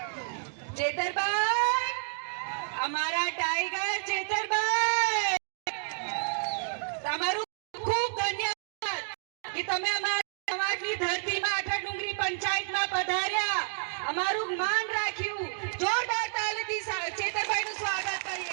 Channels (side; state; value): left; silent; digital silence